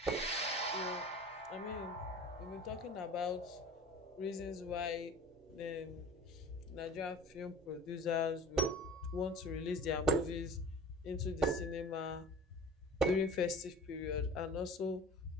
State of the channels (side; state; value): both; normal; correlation 0.41